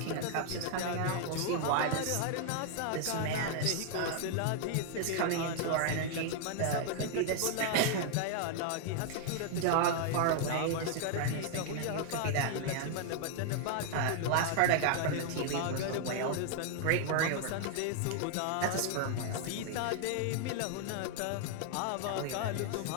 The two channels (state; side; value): different; both; correlation 0.00